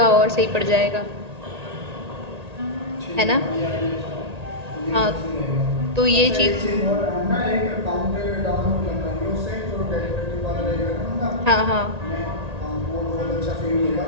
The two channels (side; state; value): left; late; 1.8 ms